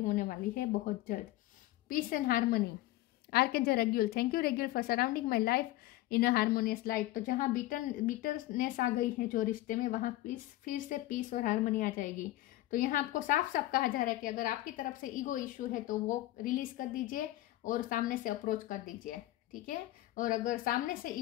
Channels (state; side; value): quieter; right; 16.4 dB